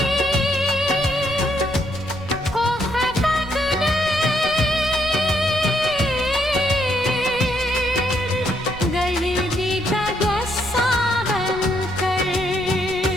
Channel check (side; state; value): right; noise; rumble, 15 dB below the sound